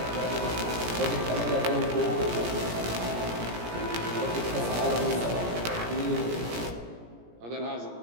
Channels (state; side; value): late; left; 17 ms